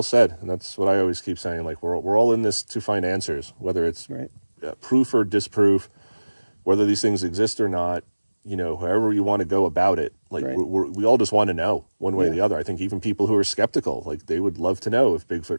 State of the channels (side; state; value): both; inverted; correlation -1.00